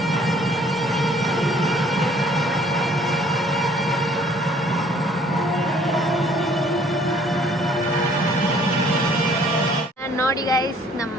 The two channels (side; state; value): both; normal; correlation 0.58